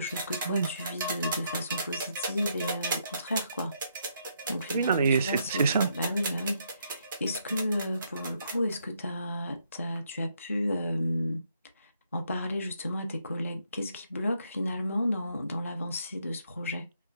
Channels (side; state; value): both; inverted; correlation -0.75